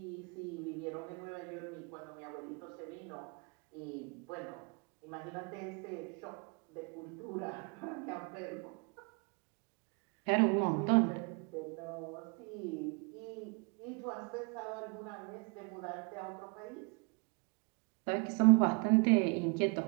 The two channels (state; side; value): quieter; left; 34.3 dB